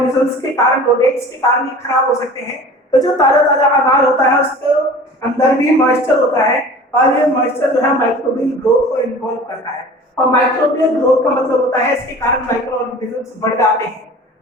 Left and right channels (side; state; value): both; normal; correlation 0.42